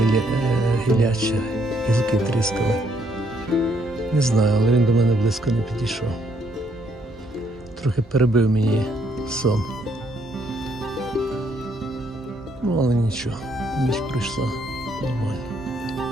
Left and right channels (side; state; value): both; normal; correlation 0.70